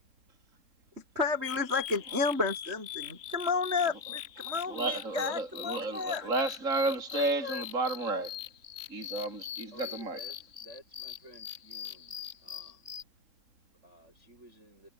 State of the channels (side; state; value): left; late; 3.7 ms